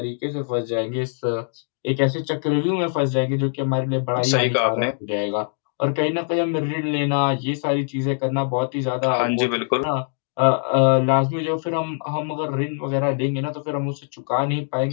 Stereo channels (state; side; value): silent; right; digital silence